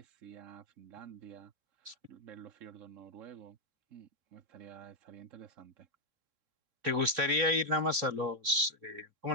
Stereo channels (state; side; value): late; left; 3.7 ms